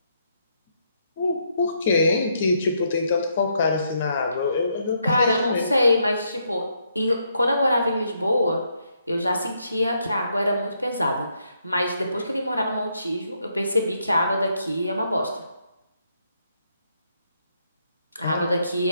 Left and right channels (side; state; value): both; inverted; correlation -0.76